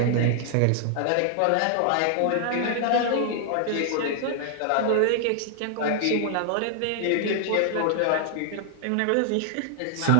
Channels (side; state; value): both; different; correlation 0.00